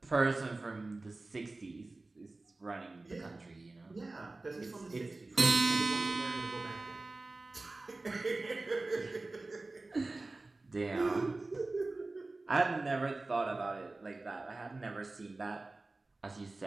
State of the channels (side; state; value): left; quieter; 3.2 dB